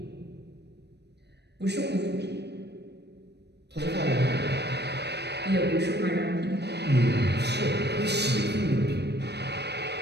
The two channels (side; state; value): left; late; 0.49 ms